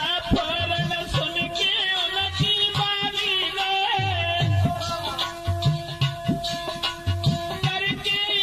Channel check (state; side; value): identical; both; correlation 1.00